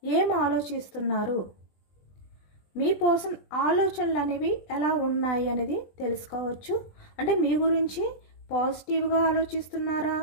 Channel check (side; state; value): right; late; 20 ms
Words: ఏం ఆలోచిస్తున్నారు, మీ పర్సన్ ఆలోచనలు అనేవి ఎలా ఉన్నాయి అనేది తెలుసుకోవచ్చు. అంటే మీ గురించి పాజిటివ్గా ఆలోచిస్తున్నారా,